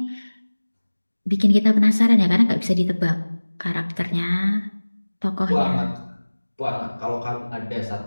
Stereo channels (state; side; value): inverted; both; correlation -1.00